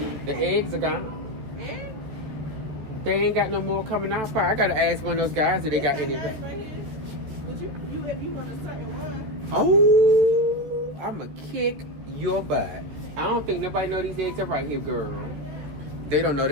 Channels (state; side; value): late; left; 14 ms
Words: eggs are gone. They ain't got no more coming out. I gotta ask one of those guys if they got any. But you if you want a certain one. Oh, I'ma kick your butt. I don't think nobody know these eggs are right here, girl. They don't know